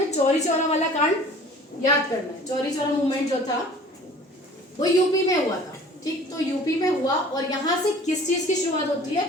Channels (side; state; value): both; normal; correlation 0.47